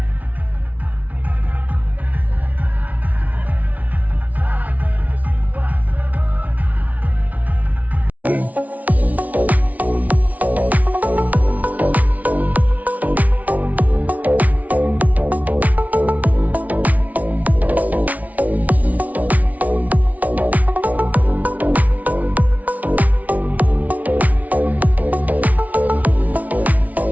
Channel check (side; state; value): left; late; 0.072 ms